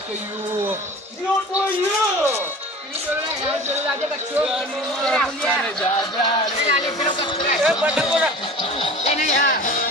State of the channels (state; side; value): normal; both; correlation 0.39